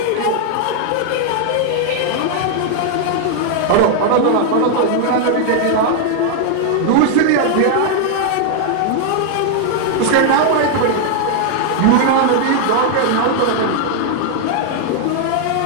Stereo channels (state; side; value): different; both; correlation 0.00